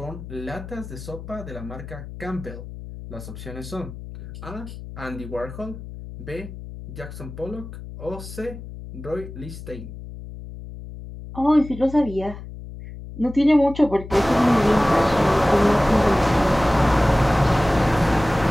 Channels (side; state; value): left; noise; hum, 12 dB below the sound